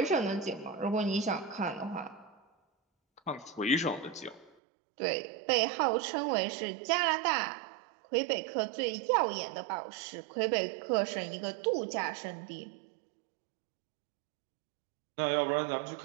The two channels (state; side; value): drops out; left; at 4.5 s